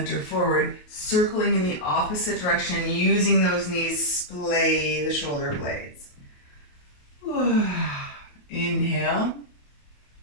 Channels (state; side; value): late; right; 28 ms